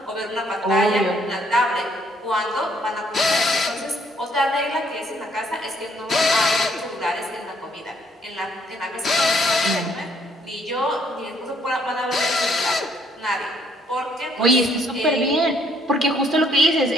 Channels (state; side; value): normal; both; correlation 0.67